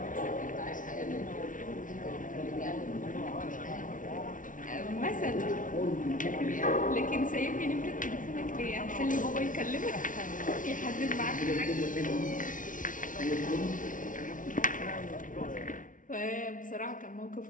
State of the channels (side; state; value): right; late; 0.38 ms